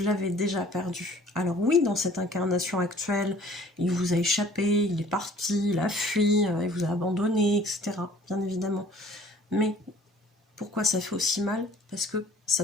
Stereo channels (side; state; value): both; normal; correlation 0.53